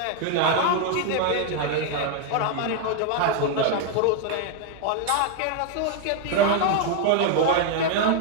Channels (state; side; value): different; both; correlation 0.01